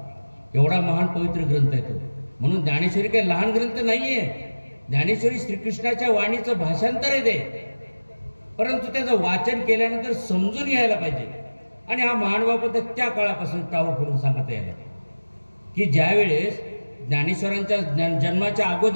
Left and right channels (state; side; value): inverted; both; correlation -1.00